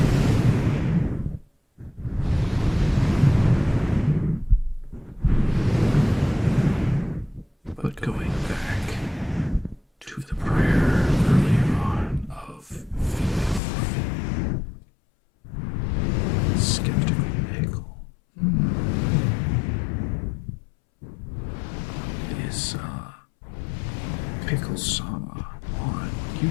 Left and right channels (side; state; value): right; drops out; at 13.6 s